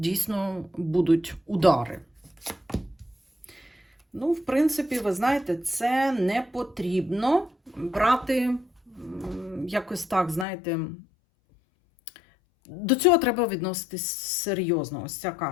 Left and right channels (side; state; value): right; drops out; at 10.5 s